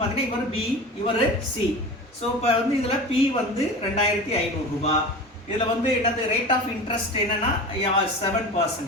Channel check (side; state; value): both; normal; correlation 0.33